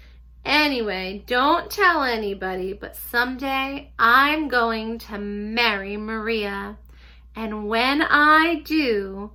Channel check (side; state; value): both; identical; correlation 1.00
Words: Anyway, don't tell anybody, but someday I'm going to marry Maria. And when I do,